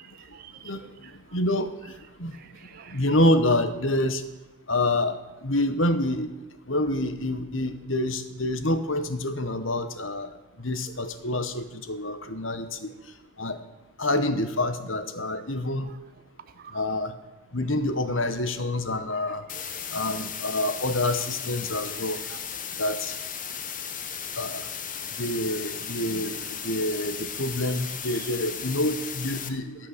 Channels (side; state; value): both; normal; correlation 0.11